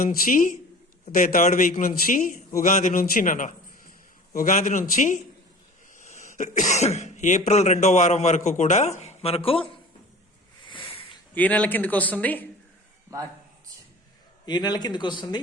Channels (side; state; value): both; normal; correlation 0.41